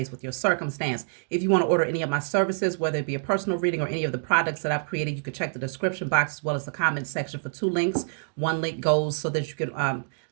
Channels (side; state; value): left; silent; digital silence